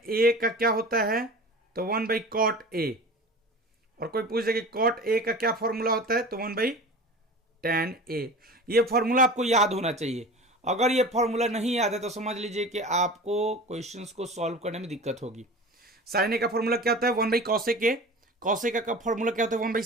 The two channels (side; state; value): both; normal; correlation 0.36